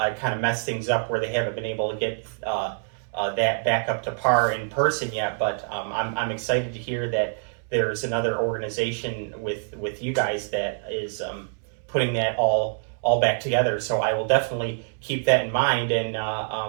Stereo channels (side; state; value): left; silent; 61 dB below the other